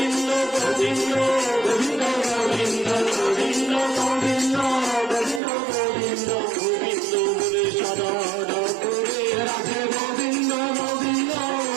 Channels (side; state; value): left; drops out; at 5.4 s